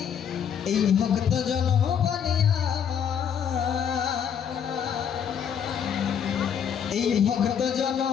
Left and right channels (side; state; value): right; quieter; 8.0 dB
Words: এই ভক্তজন বলে আমার, এই ভক্তজন